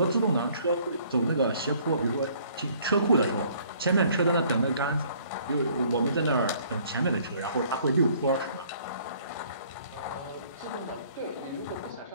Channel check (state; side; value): inverted; both; correlation -0.59